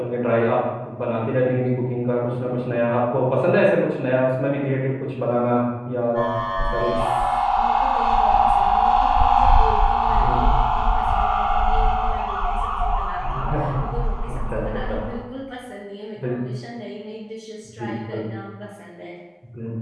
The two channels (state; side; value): identical; both; correlation 1.00